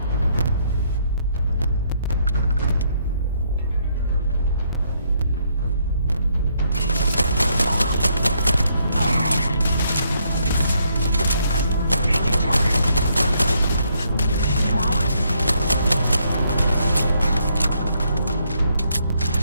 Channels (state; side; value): inverted; both; correlation -0.73